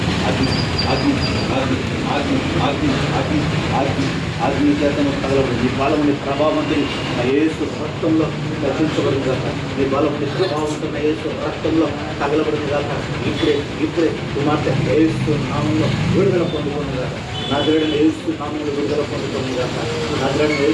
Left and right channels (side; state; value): both; identical; correlation 1.00